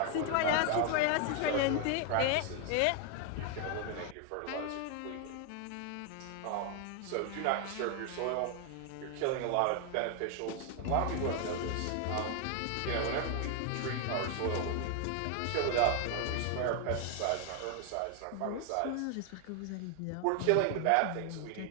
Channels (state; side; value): different; both; correlation 0.00